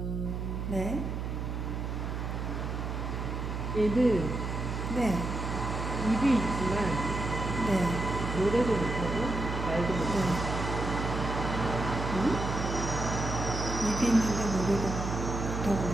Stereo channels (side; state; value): right; noise; hum, 3 dB below the sound